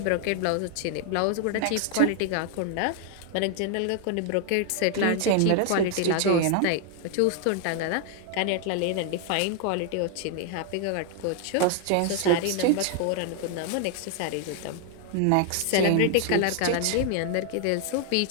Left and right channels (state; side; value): different; both; correlation 0.00